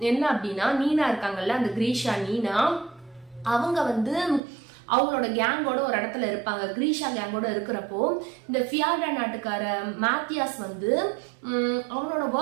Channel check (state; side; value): drops out; left; at 4.4 s